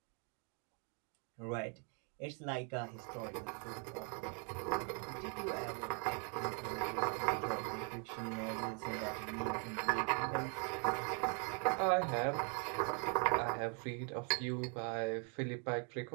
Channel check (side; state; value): left; quieter; 38.8 dB